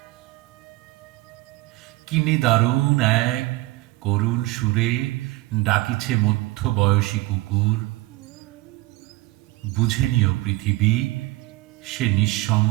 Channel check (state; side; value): quieter; left; 20.1 dB